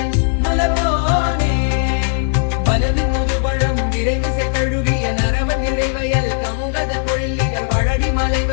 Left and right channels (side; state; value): right; silent; digital silence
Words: முலவோனே பலவின் முதுபழம் விரைவு செய்தழுகிய நரவன் இடைவயல் கமுகத பொழிலிகள் வழடி